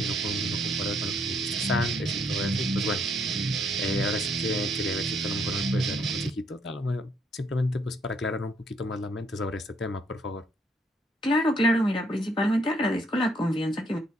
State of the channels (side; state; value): both; normal; correlation 0.70